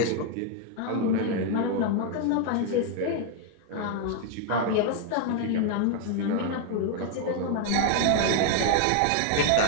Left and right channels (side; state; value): both; different; correlation 0.00